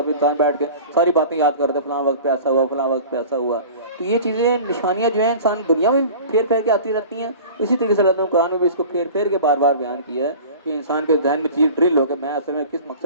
پھر انسان بیٹھ کے ساری باتیں یاد کرتا ہے، فلاں وقت پہ ایسا ہوا، فلاں وقت پہ ایسا ہوا. تو یہ چیزیں نشانیاں جو ہیں انسان دنیا میں پھیر پھیر کے آتی رہتی ہیں. اسی طریقے سے اللہ تعالیٰ نے قرآن میں بھی اس کو پھیر پھیر کے بار بار بیان کیا ہے کہ انسان کے ذہن میں چیز ڈرل ہو کہ میں اصل میں کس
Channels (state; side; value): inverted; both; correlation -0.40